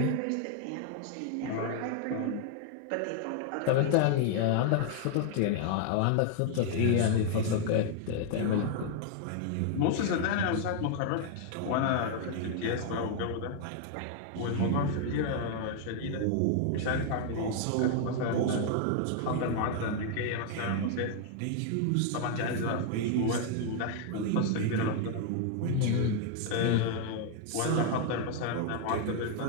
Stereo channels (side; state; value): both; different; correlation 0.00